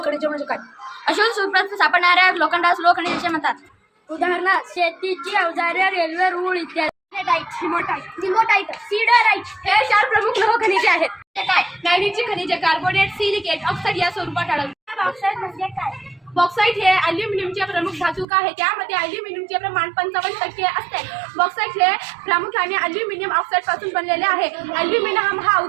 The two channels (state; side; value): drops out; left; at 18.2 s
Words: खनिजे म्हणजे काय? अशोध सूत्रात सापडणाऱ्या लोखंडास लोह खनिजे म्हणतात. उदाहरणार्थ शेतीची अवजारे, रेल्वे रूळ इत्यादी. सिल्वरटाइट, सीडराइट हे 4 प्रमुख लोह खनिजे आहेत. हे काय? मॅग्नीजची खनिजे कार्बोनेट, सिलिकेट, ऑक्साईड या स्वरूपात आढळतात. बॉक्साइट म्हणजे काय? बॉक्साईट हे अल्युमिनियमचे प्रमुख धातुक आहे. त्यामध्ये अल्युमिनियमचे प्रमाण 55% असते. बॉक्साईट हे प्रामुख्याने अल्युमिनियम ऑक्साईड पासून बनलेले आहे. अल्युमिनियम हा